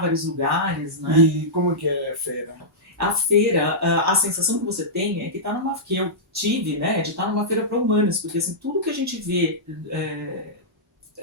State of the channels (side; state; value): both; normal; correlation -0.14